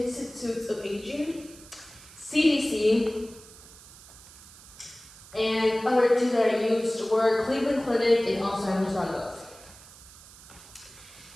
of Aging, CDC, and other two that I used were Cleveland Clinic and Alzheimer's.gov.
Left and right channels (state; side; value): noise; right; hiss, 20 dB below the sound